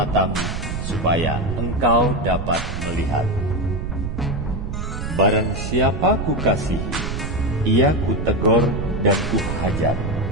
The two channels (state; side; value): noise; right; rumble, 5 dB below the sound